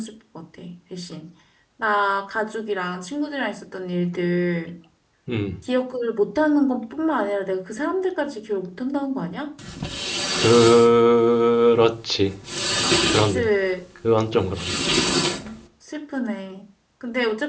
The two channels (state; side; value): identical; both; correlation 1.00